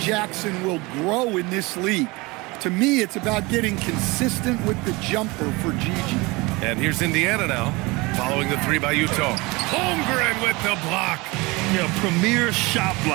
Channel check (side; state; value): left; quieter; 24.1 dB